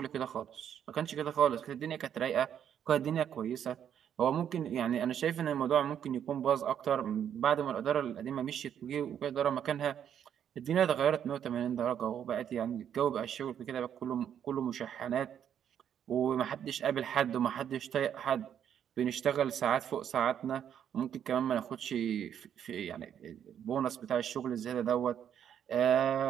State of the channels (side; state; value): left; quieter; 9.2 dB